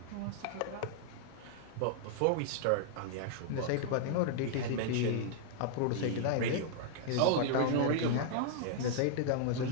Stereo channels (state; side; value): different; both; correlation -0.01